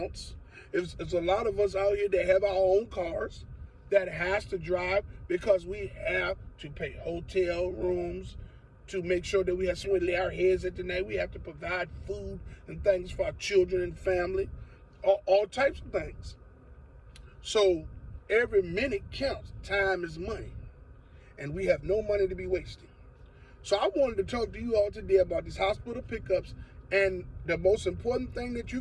There's a lot of us out here that have our own cars that has to drive because we have to pay hotel rooms to make sure that we have somewhere to lay our heads at the night. We have to provide food and things for our children and family, all types of things. So every minute counts. Time is money. And we have no money to be wasting. So I wanted to talk to you all today about these hospital pickups, and the most important thing that you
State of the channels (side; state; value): both; identical; correlation 1.00